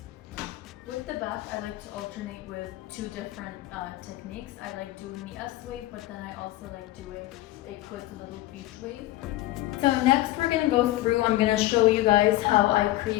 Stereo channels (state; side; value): quieter; right; 16.5 dB